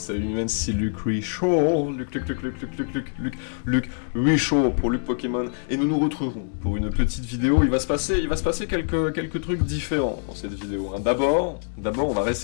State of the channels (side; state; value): right; silent; 62 dB below the other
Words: Mimens, c'est Luc Richaud, Luc Richaud pour Luc Pokémon, et nous nous retrouverons pour une petite vidéo. Il va se passer quelques trucs différents dans cette vidéo. Hein. D'abord, on va